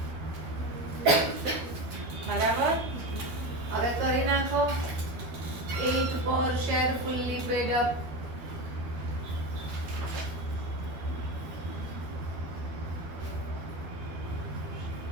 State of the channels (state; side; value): late; left; 12 ms